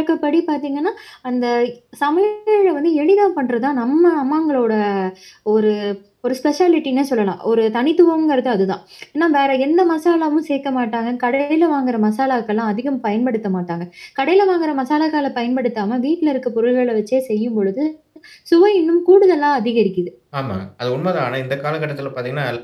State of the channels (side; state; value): both; identical; correlation 1.00